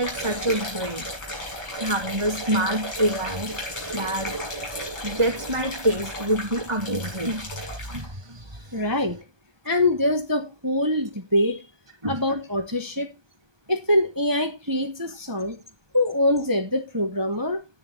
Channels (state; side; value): late; left; 1.2 ms